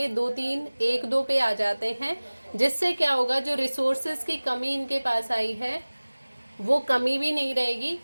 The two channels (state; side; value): inverted; both; correlation -1.00